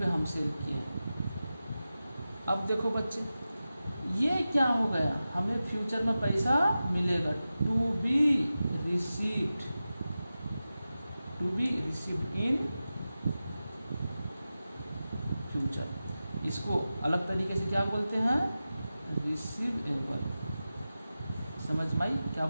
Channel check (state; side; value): inverted; both; correlation -0.94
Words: हम सेल किए। अब देखो बच्चे, ये क्या हो गया? हमें फ्यूचर में पैसा मिलेगा, to be received in future. इसको अलग तरीके से क्या बोलते हैं? रिसीवेबल। समझ में आई? क्या